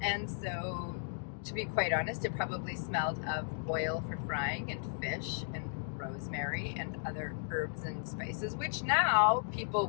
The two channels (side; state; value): right; silent; digital silence